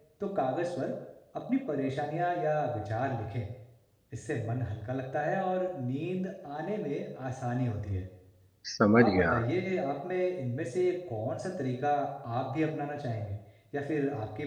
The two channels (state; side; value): identical; both; correlation 1.00